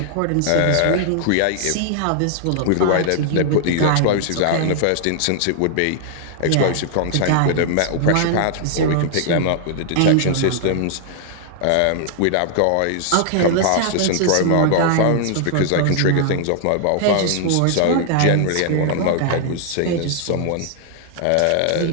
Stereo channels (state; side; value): different; both; correlation 0.00